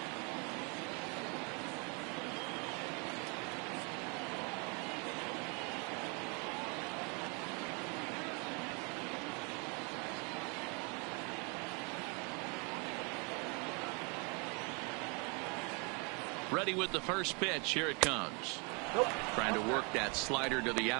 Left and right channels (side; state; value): left; quieter; 32.8 dB